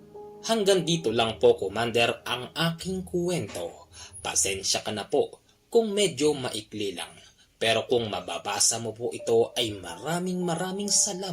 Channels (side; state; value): both; identical; correlation 1.00